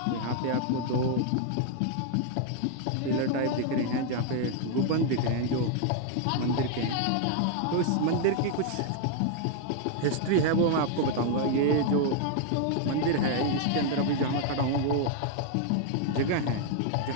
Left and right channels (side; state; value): both; different; correlation 0.00